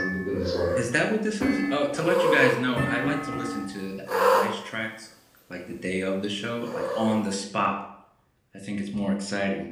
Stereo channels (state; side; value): identical; both; correlation 1.00